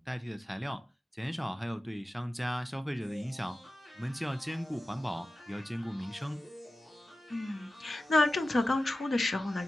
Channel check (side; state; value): both; normal; correlation 0.94